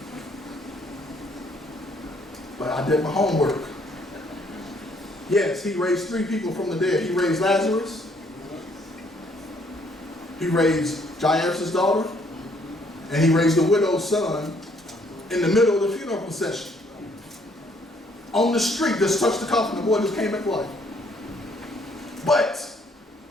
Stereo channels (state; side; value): normal; both; correlation 0.66